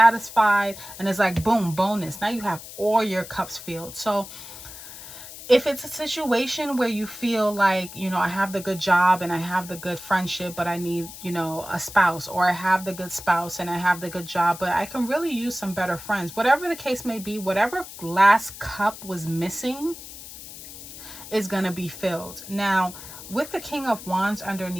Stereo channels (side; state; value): left; noise; hiss, 14 dB below the sound